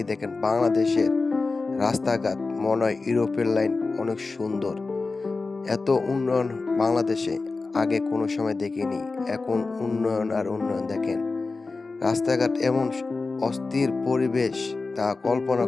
বাংলাদেশের রাস্তাঘাট মনে হয় ইউরোপের লাইন অনেক সুন্দর। এত উন্নয়ন বাংলাদেশে আগে কোনো সময় দেখিনি। এখন উন্নয়ন আর উন্নয়ন দেখেন। রাস্তাঘাট এমন অস্থির পরিবেশ তা কল্পনা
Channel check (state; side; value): quieter; right; 3.8 dB